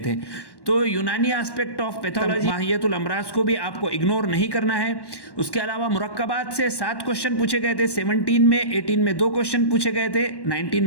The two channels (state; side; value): late; right; 1.1 ms